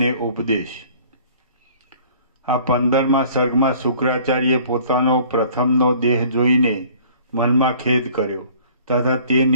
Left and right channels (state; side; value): inverted; both; correlation -0.52